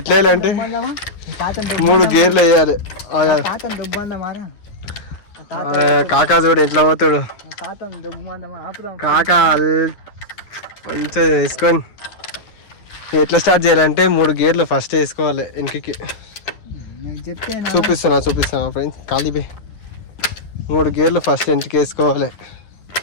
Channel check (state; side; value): late; right; 9.8 ms